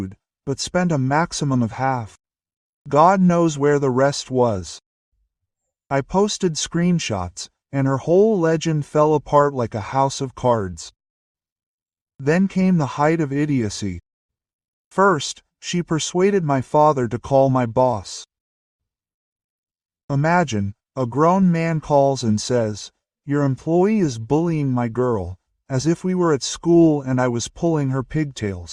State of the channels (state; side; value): identical; both; correlation 1.00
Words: but spent a maximum of half. God knows where the rest was. I posted screenshots, and her whole legend fell apart like a house of cards. Then came the height of idiocy. First, she persuaded my father to call my boss. Imagine, a grown man calls and says, "Your employee is bullying my girl," as if we were at school and I was pulling her